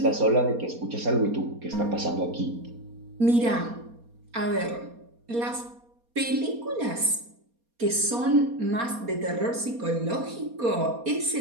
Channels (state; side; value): late; left; 4.2 ms